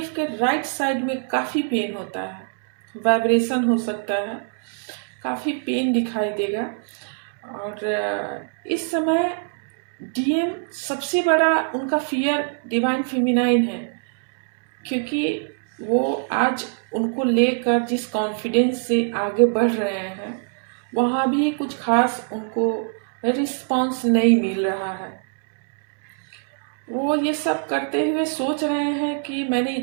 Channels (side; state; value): left; silent; 61 dB below the other